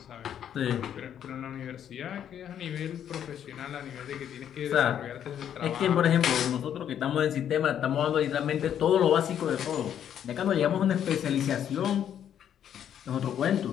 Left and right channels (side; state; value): right; quieter; 9.6 dB